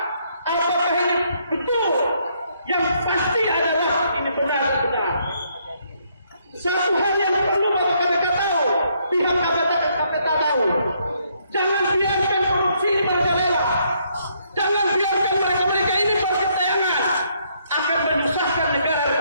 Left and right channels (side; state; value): both; inverted; correlation -0.71